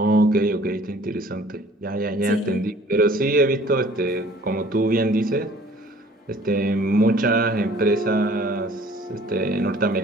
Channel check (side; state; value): both; normal; correlation 0.52